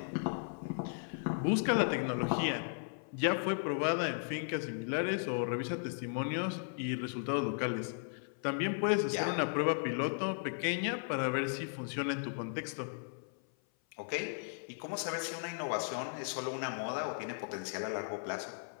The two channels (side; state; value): right; silent; 54 dB below the other